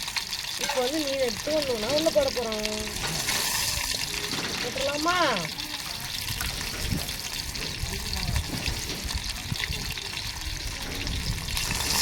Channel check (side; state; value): both; identical; correlation 1.00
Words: இப்போ வந்து மீன் எடுத்து வந்தோம்னா உள்ள போட போகிறோம். போட்டுடலாமா?